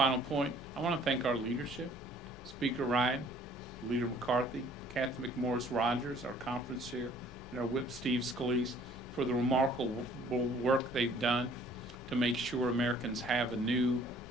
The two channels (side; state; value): both; normal; correlation 0.56